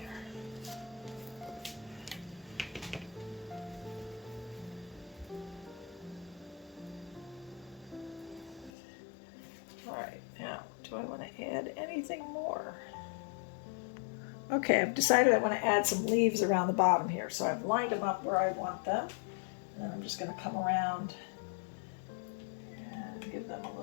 All right, now, do I want to add anything more? Okay, I've decided I want to add some leaves around the bottom here, so I've lined them up where I want them, and then I'm just going to come around and give them a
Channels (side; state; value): right; drops out; at 8.7 s